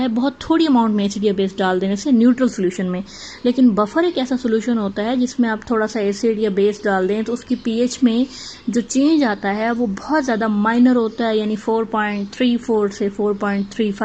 बहुत थोड़ी अमाउंट में एसिड या बेस डाल देने से न्यूट्रल सॉल्यूशन में। लेकिन बफर एक ऐसा सॉल्यूशन होता है जिसमें आप थोड़ा सा एसिड या बेस डाल दें तो उसकी पीएच में जो चेंज आता है वो बहुत ज़्यादा माइनर होता है, यानी 4.34 से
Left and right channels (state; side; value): identical; both; correlation 1.00